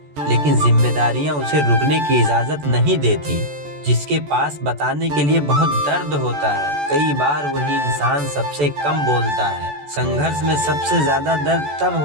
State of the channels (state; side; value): late; left; 14 ms